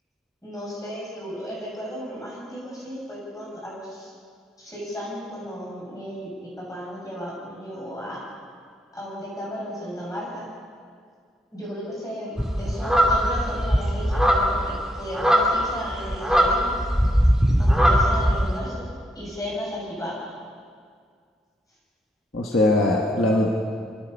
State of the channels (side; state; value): both; normal; correlation 0.77